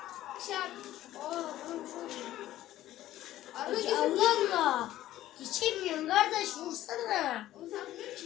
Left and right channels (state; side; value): quieter; right; 14.1 dB